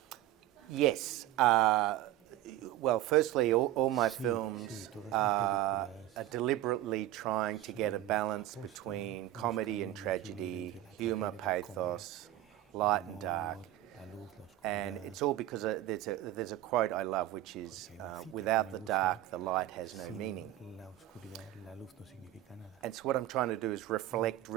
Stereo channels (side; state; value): left; quieter; 14.2 dB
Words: Yes. Well, firstly, all my films are deliberately trying to get a balance between comedy and tragedy, humour, pathos, light and dark. And it's all because there's a quote I love, which is, without the dark, the light has no meaning. And so what I'm trying to do is reflect